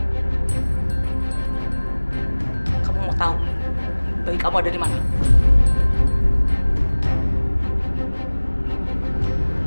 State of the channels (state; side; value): inverted; both; correlation -1.00